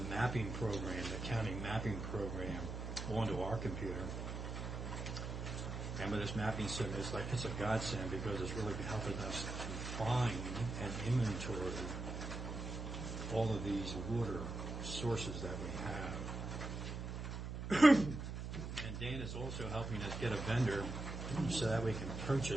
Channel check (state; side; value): noise; right; hum, 5 dB below the sound